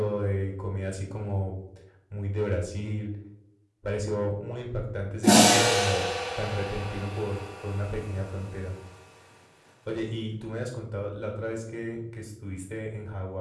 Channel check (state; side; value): identical; both; correlation 1.00